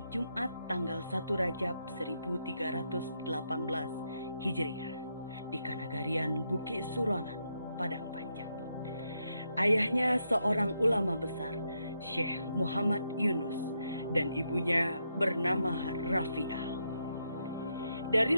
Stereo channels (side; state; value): both; inverted; correlation -0.81